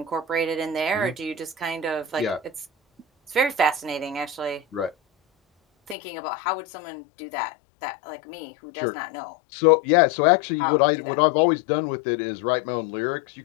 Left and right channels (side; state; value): right; drops out; at 6.0 s